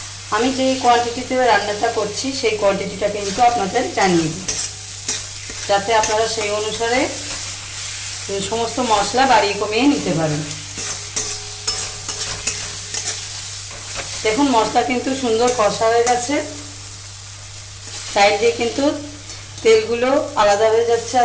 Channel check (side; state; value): both; identical; correlation 1.00